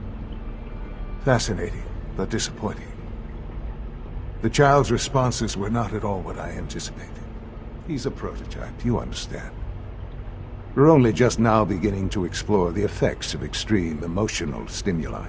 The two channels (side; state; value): both; identical; correlation 1.00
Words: Fascinating, but disappointing. The child's responses were not at all what I anticipated. He's a prototype, you understand. We're only just now beginning to explore the effects of extreme emotional stimuli.